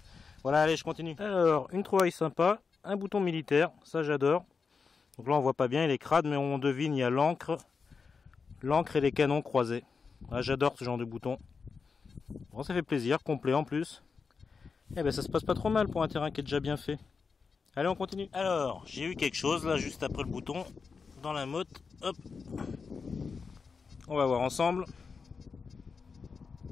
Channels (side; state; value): right; quieter; 5.2 dB